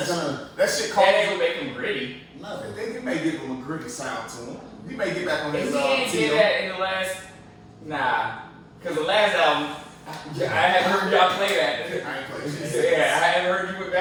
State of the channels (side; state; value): both; identical; correlation 1.00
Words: gonna. That shit That called. ain't gonna make him gritty. No. They may give him a gritty sound to him. He may get back on If his he ain't did that in the last, cause the last album, I haven't heard y'all play that. I ain't played shit. Yeah, I haven't heard you went